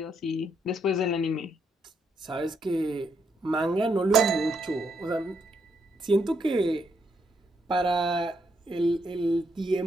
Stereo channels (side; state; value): both; normal; correlation 0.76